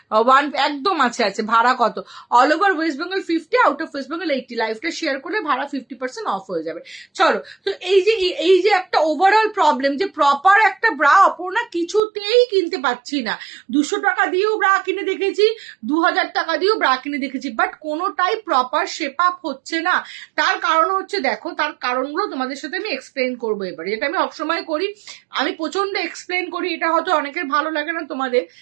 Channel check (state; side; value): drops out; left; at 12.0 s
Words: একদম আছে আছে। ভাড়া কত? All over West Bengal 50, out of West Bengal 80। লাইফটা শেয়ার করলে ভাড়া 50% অফ হয়ে যাবে। চলো, তো এই যে একটা ওভারঅল প্রবলেম যে প্রপার একটা ব্রা অপর্ণা কিছুতেই কিনতে পাচ্ছি না। 200 টাকা দিয়েও ব্রা কিনে দেখেছি, 2000 টাকা দিয়েও ব্রা কিনে দেখেছি, বাট কোনোটাই প্রপার শেপ আপ হচ্ছে না। তার কারণ হচ্ছে, দেখো তার কারণগুলো তোমাদের সাথে আমি এক্সপ্লেন করবো এবারে, যেটা আমি সবসময় করি, আমি প্রচন্ড এক্সপ্লেন করি। এটা হয়তো অনেকের ভালো লাগে না, তোমাদের